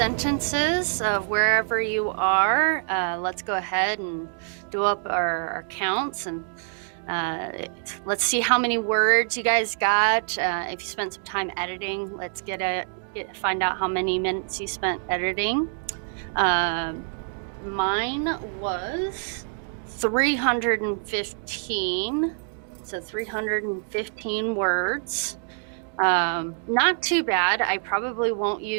of wherever you are. Let's go ahead and do up our counts, and let's see how many words you guys got. If you spent some time editing, let's find out how many minutes you spent editing. Mine was 315, so 315 words. Not too bad. I probably won't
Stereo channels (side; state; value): left; silent; 61 dB below the other